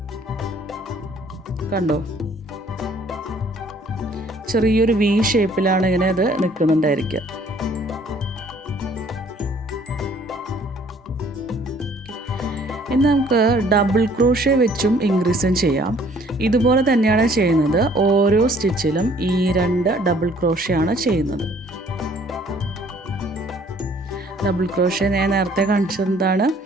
കണ്ടോ, ചെറിയൊരു വി ഷേപ്പിലാണ് ഇങ്ങനെ അത് നിൽക്കുന്നുണ്ടായിരിക്കുക. ഇനി നമുക്ക് ഡബിൾ ക്രോഷേ വെച്ചും ഇൻക്രീസും ചെയ്യാം. ഇതുപോലെ തന്നെയാണ് ചെയ്യുന്നത്. ഓരോ സ്റ്റിച്ചിലും ഈ 2 ഡബിൾ ക്രോഷേ ആണ് ചെയ്യുന്നത്. ഡബിൾ ക്രോഷേ ഞാൻ നേരത്തെ കാണിച്ചതാണ്.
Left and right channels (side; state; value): both; normal; correlation 0.59